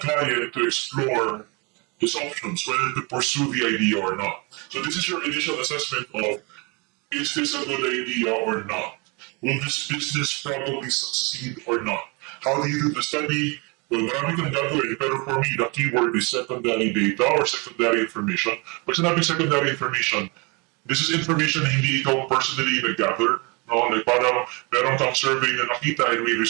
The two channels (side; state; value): left; quieter; 29.8 dB